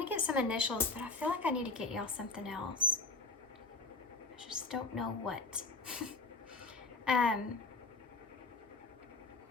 to get some initials, but I feel like I need to get y'all something else. I just don't know what. I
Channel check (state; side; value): quieter; right; 3.7 dB